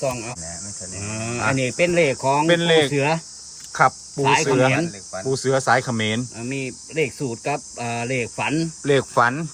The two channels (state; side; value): identical; both; correlation 1.00